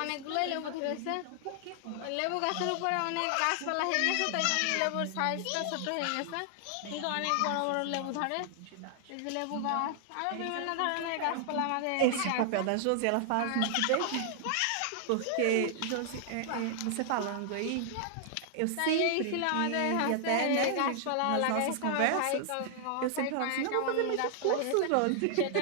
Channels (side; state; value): both; different; correlation 0.00